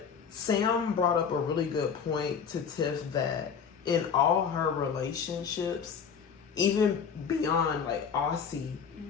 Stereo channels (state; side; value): quieter; right; 6.7 dB